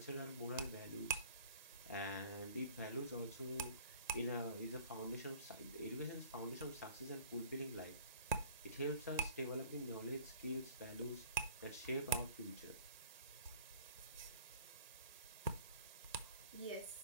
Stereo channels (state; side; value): inverted; both; correlation -0.50